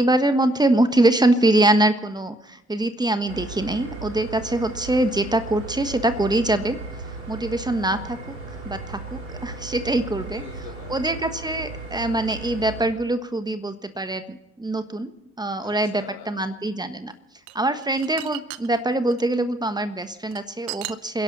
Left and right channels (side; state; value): both; normal; correlation 0.65